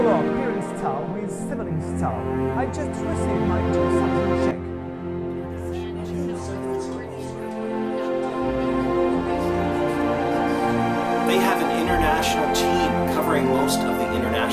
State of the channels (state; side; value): identical; both; correlation 1.00